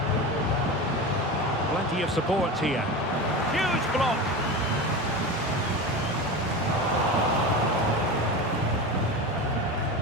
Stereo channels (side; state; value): both; normal; correlation 0.26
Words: Plenty of support here. Huge block.